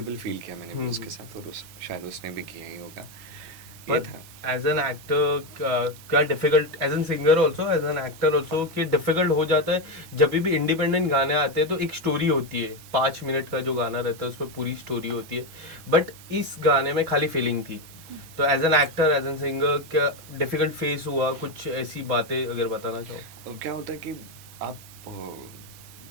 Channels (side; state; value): left; late; 6.1 ms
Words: फील किया मैंने हम्म। उसके साथ, और शायद उसने भी किया ही होगा। ये बट था। एज एन एक्टर क्या difficult, as an singer also, as an actor also, कि डिफिकल्ट हो जाता है जब भी इंडिपेंडेंट गाने आते हैं तो एक स्टोरी होती है, 5 मिनट का जो गाना रहता है उसमें पूरी स्टोरी होती है, बट इस गाने में खाली फीलिंग थी। तो as an actor, as an singer, क्या डिफिकल्ट फेस हुआ? कुछ ऐसी बातें अगर बताना चाहो। और क्या होता है कि आप